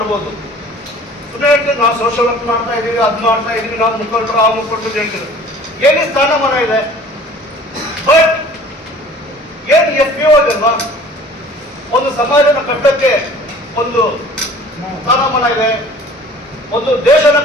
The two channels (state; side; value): normal; both; correlation 0.48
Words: ಸುಮ್ಮನೆ ಹೇಳ್ತೀವಿ ನಾವು ಸೋಷಿಯಲ್ ವರ್ಕ್ ಮಾಡ್ತಾ ಇದೀವಿ, ಅದು ಮಾಡ್ತಾ ಇದೀವಿ, ನಾವು ಮುಖಂಡರು ಆ ಮುಖಂಡರು ಹೇಳ್ತೀವಿ. ಏನೇ ಸ್ಥಾನಮಾನ ಇದೆ, ಬಟ್ ಏನು FPO ಇದಲ್ವಾ, ಒಂದು ಸಮಾಜನ ಕಟ್ಟಕ್ಕೆ ಒಂದು ಸ್ಥಾನಮಾನ ಇದೆ, ಒಂದು ದೇಶನ